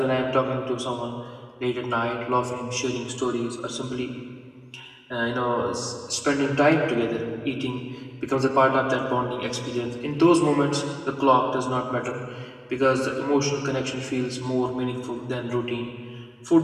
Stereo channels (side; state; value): both; identical; correlation 1.00